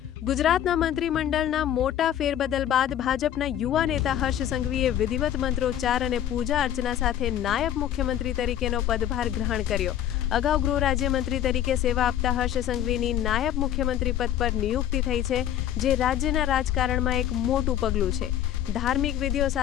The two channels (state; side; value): quieter; right; 11.0 dB